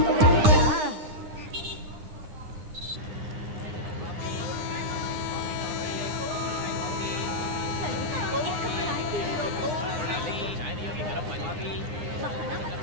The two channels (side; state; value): left; late; 9.8 ms